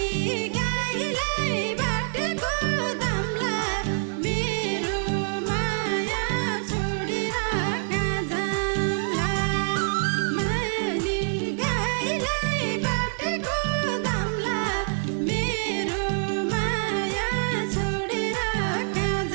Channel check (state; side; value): silent; left; 59 dB below the other